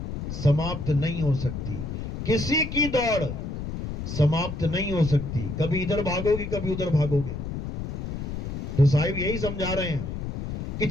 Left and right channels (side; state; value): left; noise; rumble, 6 dB below the sound